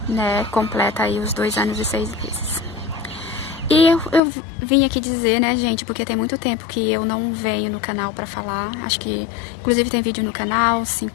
né? Completa aí os 2 anos e 6 meses. E eu vim aqui dizer, né, gente, porque tem muito tempo que eu não venho no canal pra falar. Acho que, inclusive, tem vídeo no canal,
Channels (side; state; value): right; drops out; at 4.2 s